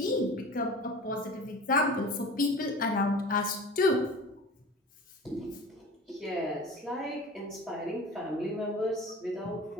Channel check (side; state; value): both; normal; correlation 0.38